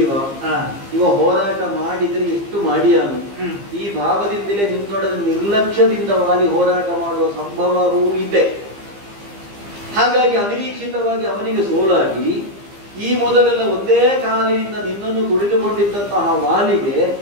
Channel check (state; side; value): late; left; 15 ms